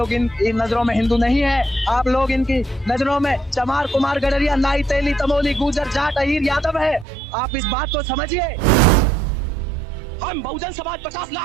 इन नजरों में हिंदू नहीं है। आप लोग इनकी नजरों में चमार, कुमार, गडरिया, नाई, तेली, तमोली, गुजर, जाट, अहीर, यादव है। आप इस बात को समझिए। हम बहुजन समाज 50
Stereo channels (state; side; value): drops out; left; at 7.1 s